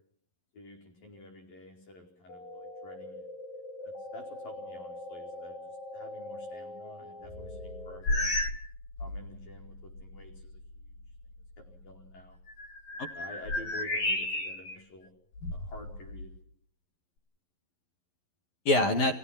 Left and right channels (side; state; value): right; late; 11 ms